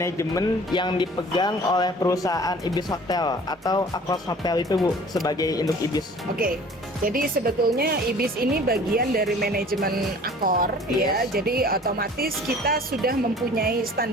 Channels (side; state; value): both; normal; correlation 0.48